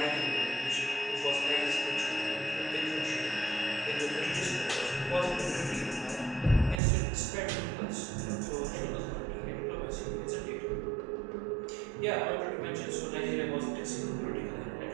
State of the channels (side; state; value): left; drops out; at 6.8 s